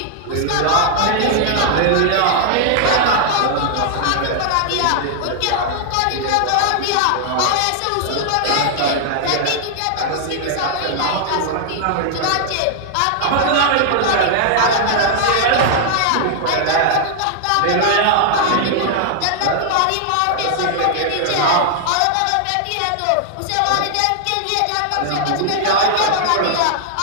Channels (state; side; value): different; both; correlation 0.00